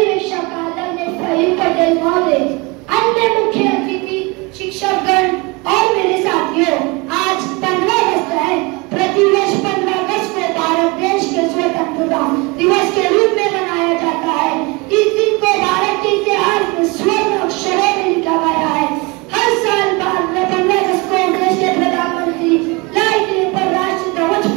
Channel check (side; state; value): left; quieter; 26.8 dB